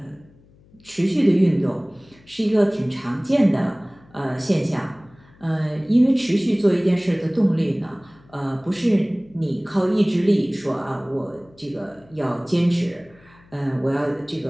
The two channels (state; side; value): noise; left; hum, 28 dB below the sound